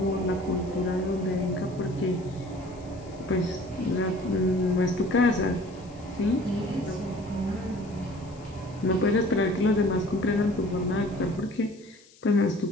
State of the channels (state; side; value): noise; left; hiss, 26 dB below the sound